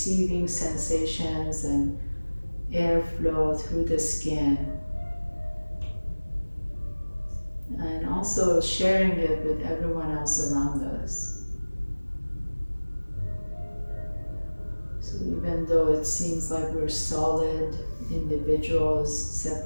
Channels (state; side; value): inverted; both; correlation -1.00